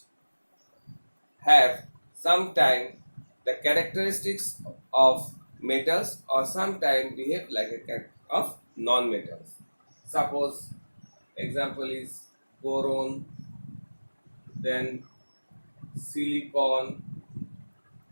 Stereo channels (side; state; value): both; inverted; correlation -1.00